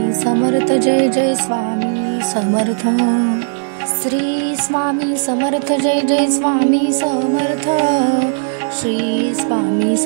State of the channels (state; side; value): silent; left; digital silence